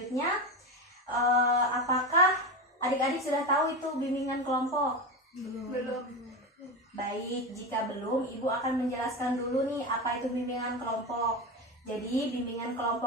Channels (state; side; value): normal; both; correlation 0.19